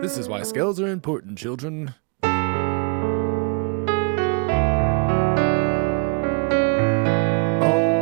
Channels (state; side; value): quieter; left; 34.2 dB